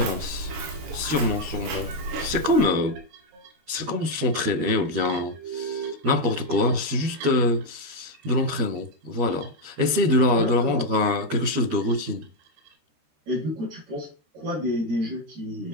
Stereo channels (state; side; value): late; left; 13 ms